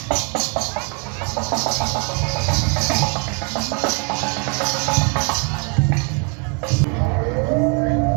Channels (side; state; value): left; quieter; 35.8 dB